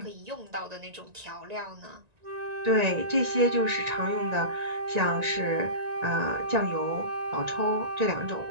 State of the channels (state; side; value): late; left; 1.9 ms